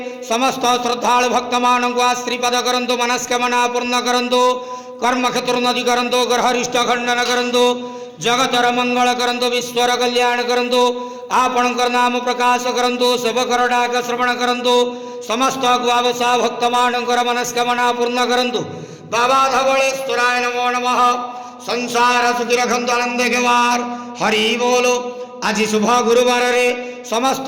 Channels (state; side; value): identical; both; correlation 1.00